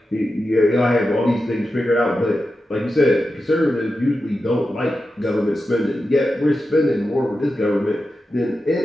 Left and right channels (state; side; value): normal; both; correlation 0.91